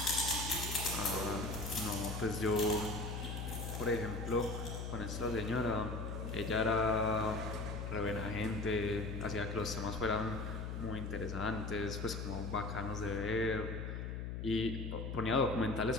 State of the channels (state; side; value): noise; left; hum, 4 dB below the sound